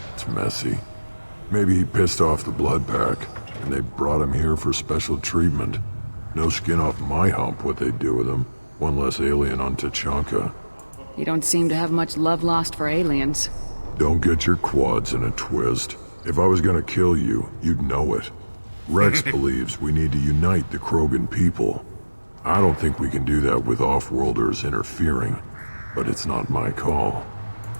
It's messy. Maybe he pissed off the Blood Pack, and they brought him here for special treatment. No skin off my hump what they do with him. One less alien on Tuchanka. You don't seem to have much love lost for aliens. Don't get your quads in a twist. If I was gonna kill you, you'd know it. Rex believes we need to unite the Krogan people. I don't think we can do that with off-worlders interfering, but it's not my call.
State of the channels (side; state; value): both; inverted; correlation -1.00